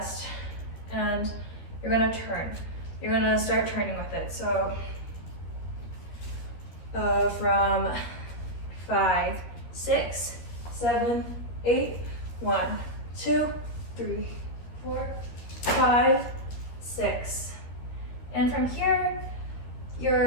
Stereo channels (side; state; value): right; late; 13 ms